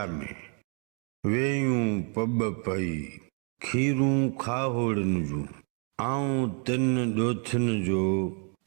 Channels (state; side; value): quieter; left; 39.0 dB